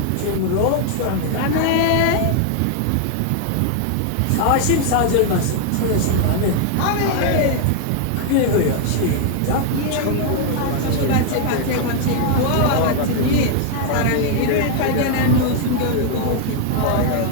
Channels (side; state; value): both; different; correlation 0.00